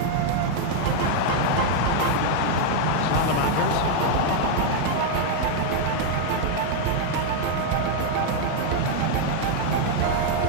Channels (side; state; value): both; different; correlation 0.00